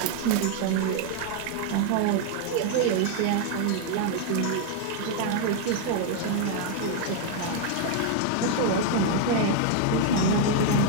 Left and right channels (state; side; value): different; both; correlation 0.00